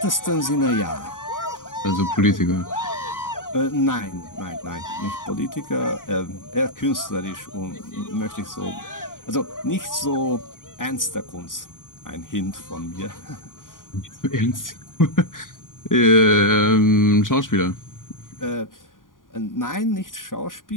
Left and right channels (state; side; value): late; right; 0.89 ms